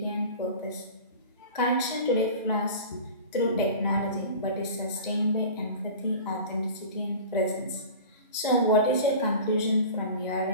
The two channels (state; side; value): inverted; both; correlation -0.37